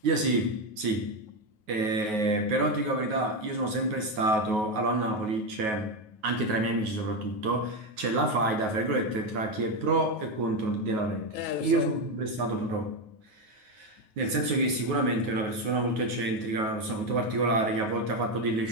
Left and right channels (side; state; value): left; late; 9.4 ms